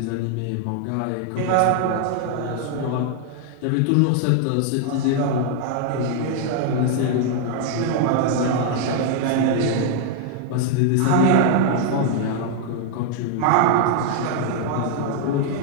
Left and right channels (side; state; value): both; different; correlation 0.00